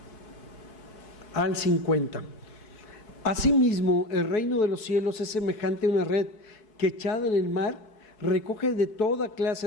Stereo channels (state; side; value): late; right; 4.7 ms